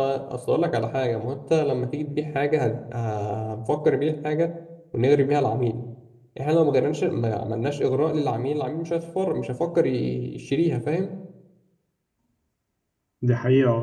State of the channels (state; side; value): identical; both; correlation 1.00